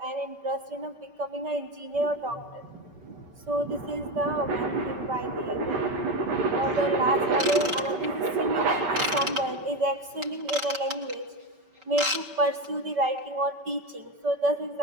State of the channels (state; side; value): late; left; 5.2 ms